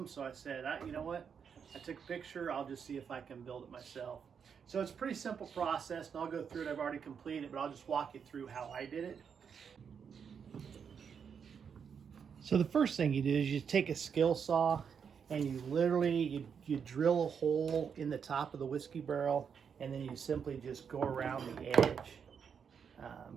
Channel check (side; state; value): left; quieter; 6.9 dB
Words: So I said, you know what? I took a picture. I'll just see if I can build it myself. So it's a pretty simple process, and I'll go through it. I've already completed it, but I'll just walk you through how I did it. So the first thing you do is you take a skill saw and you literally, you drill a hole in the top of the whiskey barrel, and then you simply just go around the edge.